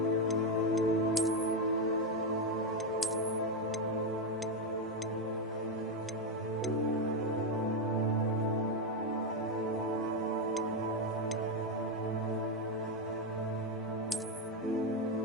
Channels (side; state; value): both; normal; correlation 0.06